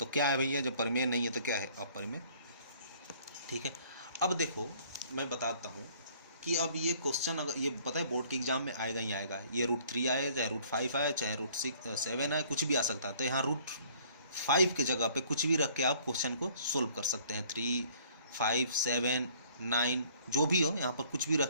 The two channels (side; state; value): both; inverted; correlation -0.57